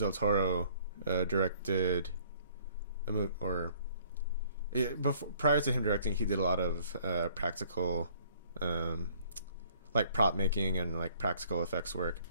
Toro directed a movie, or. Prior to him directing, he did a lot of practical, like prop making and like practical effects work,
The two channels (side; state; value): both; inverted; correlation -0.59